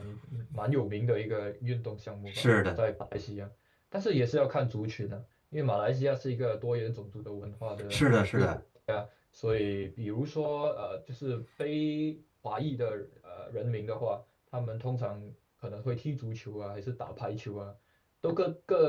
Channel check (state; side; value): identical; both; correlation 1.00